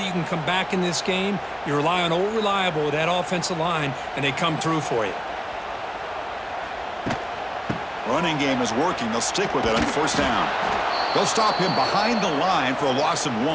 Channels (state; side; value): identical; both; correlation 1.00